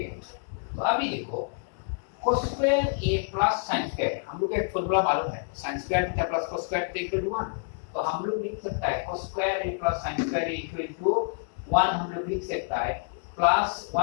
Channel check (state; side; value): silent; right; digital silence